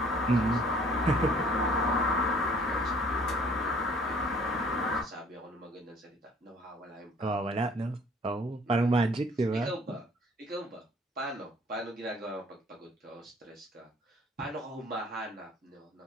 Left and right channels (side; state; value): both; normal; correlation 0.56